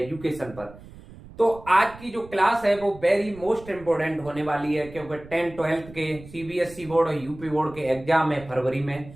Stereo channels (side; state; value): right; noise; rumble, 18 dB below the sound